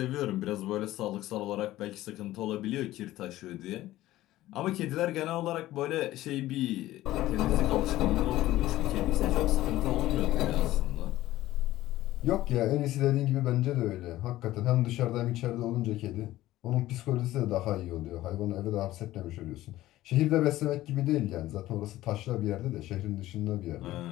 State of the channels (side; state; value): right; quieter; 15.6 dB